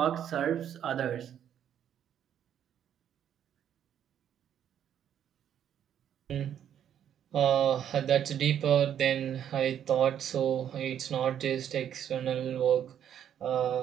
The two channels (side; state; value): left; quieter; 9.7 dB